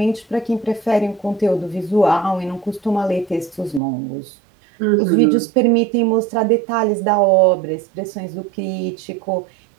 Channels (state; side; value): drops out; left; at 3.8 s